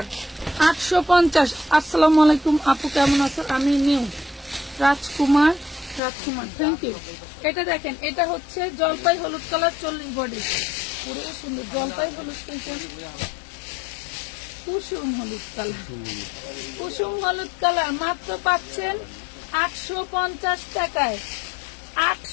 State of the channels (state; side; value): drops out; right; at 6.0 s